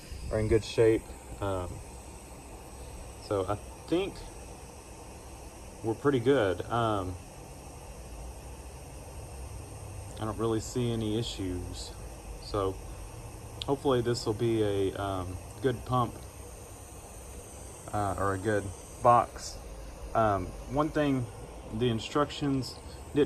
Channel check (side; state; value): both; identical; correlation 1.00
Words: are in good shape. So I think we're pretty good. I don't really see any issues. So hopefully this will be a good pump or a good box. One thing the instructions